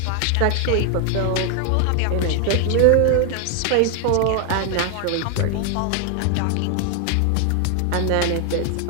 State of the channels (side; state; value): both; different; correlation 0.00